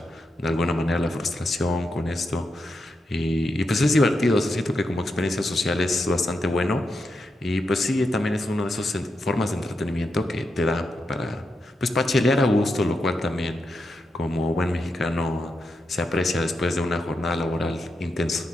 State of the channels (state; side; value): normal; both; correlation 0.85